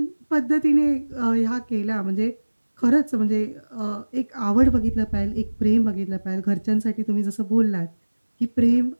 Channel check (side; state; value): both; inverted; correlation -1.00